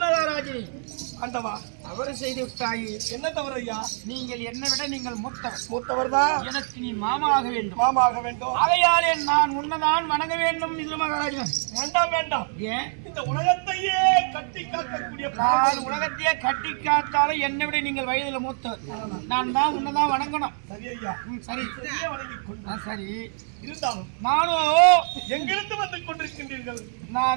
மகாராஜனே, ஆண்டவா, தவறு செய்து விட்டாயே. என்ன தவறு ஐயா? நீங்கள் என்னை விட நீங்கள் மூத்தவர் தான். எனக்கு நீ மாமாக வேண்டும். மாமாக வேண்டும். ஆகையாலே நான் உன்னதான் வணங்க வேண்டும். விதுர மகாராஜன், வேண்டாம். ஏன்? இந்த உலகத்தையே கட்டி காக்கக்கூடிய நான் உலகத்தையே கட்டி காத்தாலும் என்னை விட நீங்கள் வயதுல மூத்தவர். நான் தான் உன்னதான் வணங்கணும். சரி ஐயா, சரி வணங்கிக் கொண்டு சரி. இருந்தாலும் நானும் எங்கிருந்து வந்து கொண்டிருக்கின்றீர்கள்?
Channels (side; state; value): left; silent; 62 dB below the other